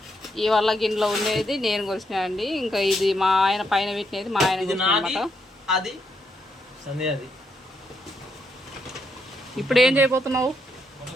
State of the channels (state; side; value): normal; both; correlation 0.78